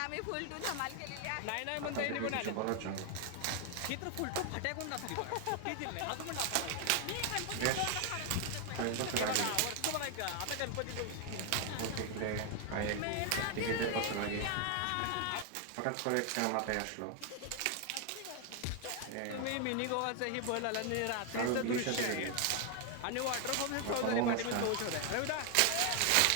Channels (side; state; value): both; different; correlation 0.00